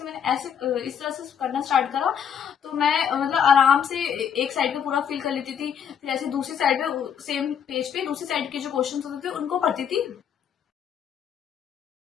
मैंने ऐसे इस तरह से करना स्टार्ट करा तो मैं मतलब आराम से एक साइड पे पूरा फिल कर लेती थी, फिर ऐसे दूसरी साइड पे सेम पेज पे दूसरी साइड के जो क्वेश्चन होते थे उनको पढ़ती थी।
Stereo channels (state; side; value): quieter; right; 8.1 dB